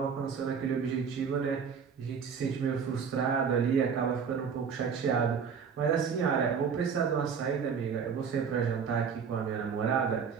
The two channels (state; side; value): quieter; left; 6.5 dB